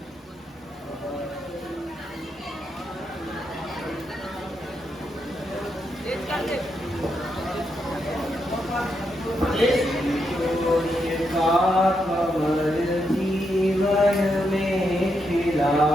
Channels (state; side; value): normal; both; correlation 0.82